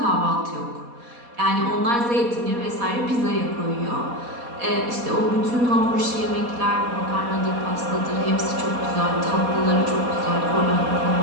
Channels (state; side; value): late; left; 4.2 ms